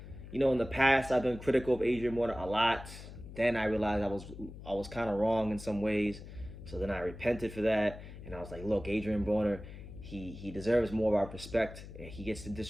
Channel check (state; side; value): noise; left; hum, 13 dB below the sound